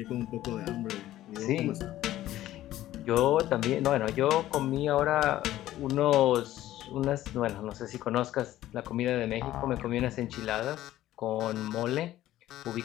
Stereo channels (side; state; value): right; quieter; 14.2 dB